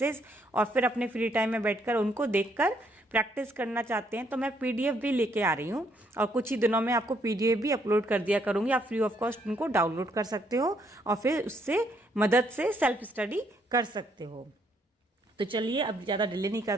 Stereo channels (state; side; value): normal; both; correlation 0.71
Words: और फिर अपने फ्री टाइम में बैठकर उनको देखकर प्रैक्टिस करना चाहते हैं, तो मैं पीडीएफ भी लेके आ रही हूँ और कुछ ही दिनों में आपको पीडीएफ भी अपलोड कर दिया करूँगी। आप फ्री ऑफ कॉस्ट उनको डाउनलोड कर सकते हो और फिर उससे मदद से सेल्फ स्टडी कर सकते हो। तो चलिए अब ज़्यादा डिले नहीं